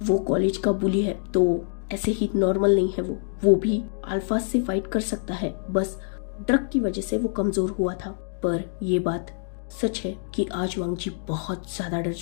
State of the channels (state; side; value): silent; right; digital silence